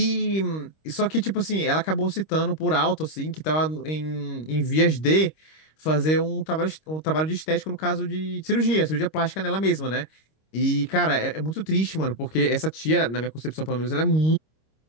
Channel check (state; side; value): late; right; 26 ms